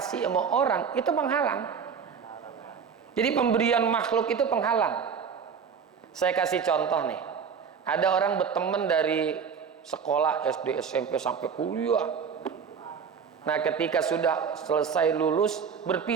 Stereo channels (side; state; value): left; quieter; 6.6 dB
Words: sama orang, itu penghalang. Jadi pemberian makhluk itu penghalang. Saya kasih contoh nih. Ada orang berteman dari sekolah SD, SMP sampai kuliah. Nah, ketika sudah selesai lulus,